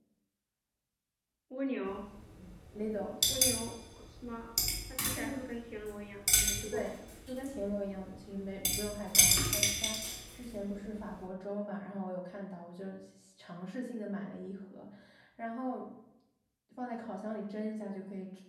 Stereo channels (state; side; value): identical; both; correlation 1.00